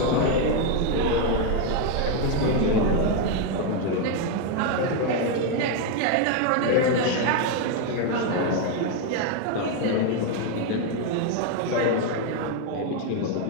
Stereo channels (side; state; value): both; different; correlation 0.02